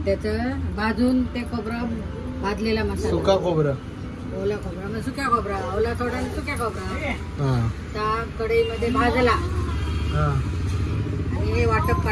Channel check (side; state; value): both; identical; correlation 1.00